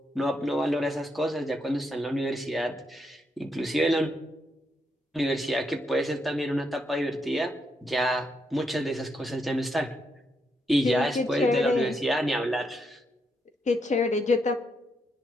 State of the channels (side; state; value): both; normal; correlation 0.79